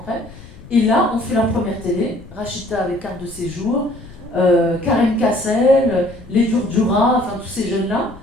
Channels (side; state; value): left; noise; rumble, 19 dB below the sound